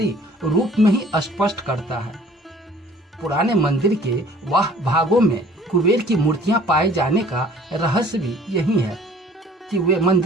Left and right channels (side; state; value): both; normal; correlation 0.52